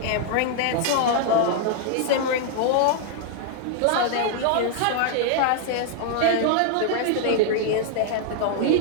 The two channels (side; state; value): both; different; correlation 0.00